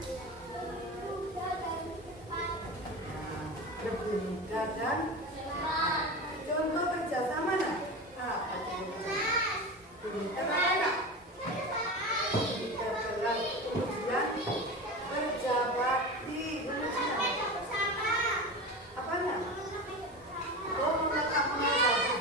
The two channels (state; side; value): normal; both; correlation 0.27